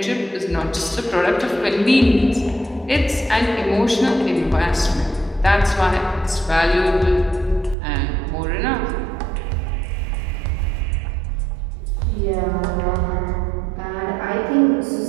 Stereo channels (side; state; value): left; drops out; at 7.8 s